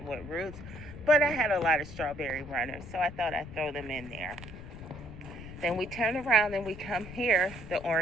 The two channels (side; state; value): left; noise; rumble, 13 dB below the sound